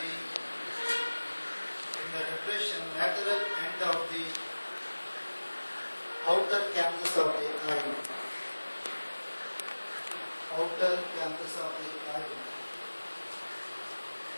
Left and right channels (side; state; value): both; inverted; correlation -1.00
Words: lateral end of the outer canthus of the eye. Outer canthus of the eye.